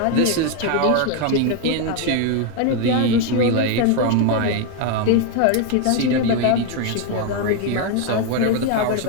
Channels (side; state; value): both; different; correlation 0.01